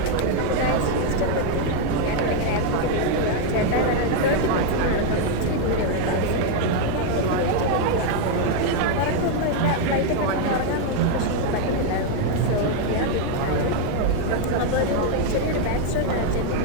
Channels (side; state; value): both; different; correlation 0.01